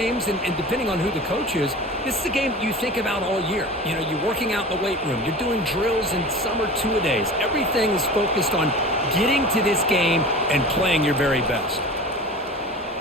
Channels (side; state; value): both; normal; correlation 0.36